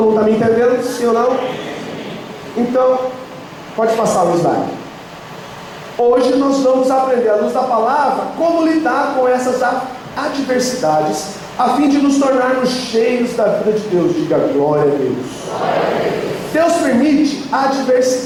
mundo está me entendendo? Sim ou não? Então, pode passar o slide. Hoje nós vamos aprender, à luz da palavra, como lidar com essas adversidades, a fim de nos tornarmos cheios da vida de Deus. Diga glória a Deus. Deus permite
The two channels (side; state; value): both; identical; correlation 1.00